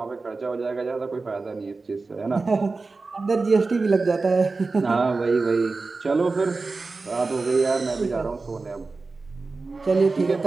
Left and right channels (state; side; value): quieter; left; 3.8 dB